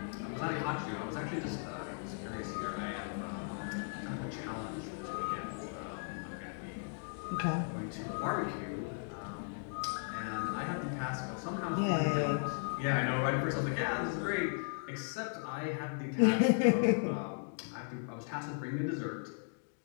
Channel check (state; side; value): silent; right; digital silence